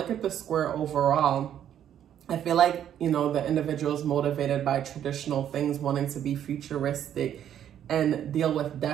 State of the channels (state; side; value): quieter; left; 10.2 dB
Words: at the square overall, I feel like, you know, the individual is motivated by traditional things, wanting to be futuristic and deal with